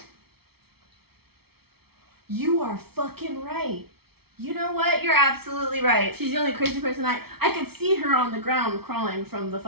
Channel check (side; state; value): left; late; 0.95 ms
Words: You are fucking right. You know what? You're absolutely right. She's the only crazy person I could see her on the ground crawling from the